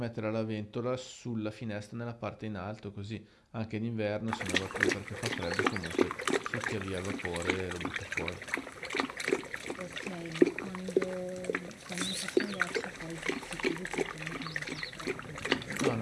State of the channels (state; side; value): identical; both; correlation 1.00